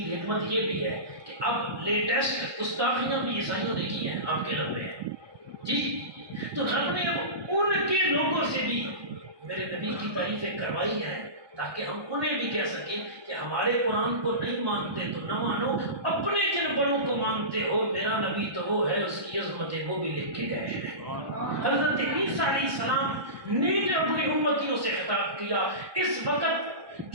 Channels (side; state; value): left; late; 1.2 ms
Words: حکمت یہ بھی ہے کہ اب لیٹسٹ گستاخیاں بھی عیسائیوں نے کی ہیں آپ کے رب میں جی، تو رب نے اب ان کے لوگوں سے بھی میرے نبی کی تعریفیں کروائی ہیں تاکہ ہم انہیں بھی کہہ سکیں کہ ہمارے قرآن کو نہیں مانتے تو نہ مانو، اپنے جن بڑوں کو مانتے ہو، میرا نبی تو وہ ہے، اس کی عظمتیں وہ بھی لکھ کے گئے ہیں۔ حضرت عیسیٰ علیہ السلام نے جب اپنی امتیوں سے خطاب کیا، اس وقت